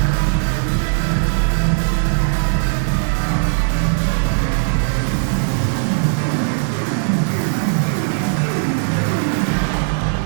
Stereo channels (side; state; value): left; silent; digital silence